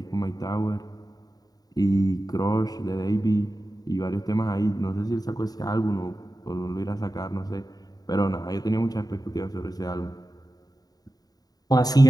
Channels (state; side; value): late; right; 0.18 ms